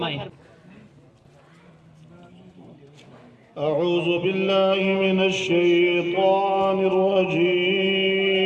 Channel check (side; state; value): both; identical; correlation 1.00